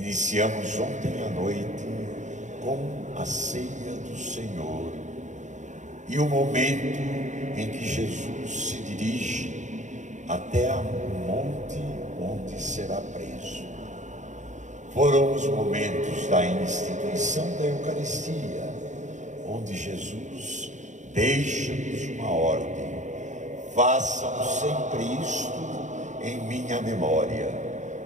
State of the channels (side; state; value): left; late; 0.35 ms